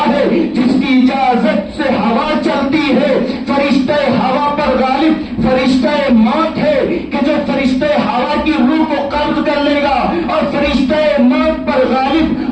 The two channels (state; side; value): identical; both; correlation 1.00